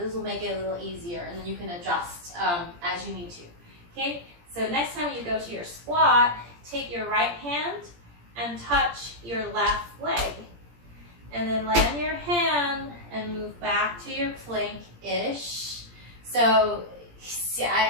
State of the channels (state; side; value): late; left; 17 ms